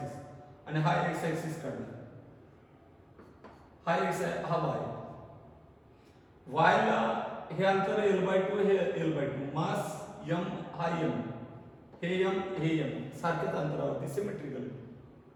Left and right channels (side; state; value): both; identical; correlation 1.00